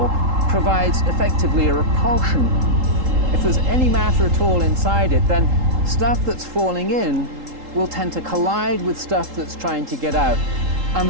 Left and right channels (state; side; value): late; left; 3.8 ms